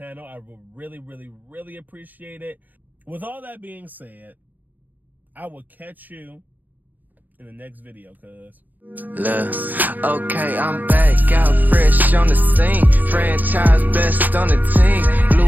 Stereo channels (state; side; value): late; left; 0.084 ms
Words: I will really, really, really appreciate it. With all that being said, I will catch you in the next video, cuz. Look, okay, I'm back, out fresh on the scene. Franchise best on the team.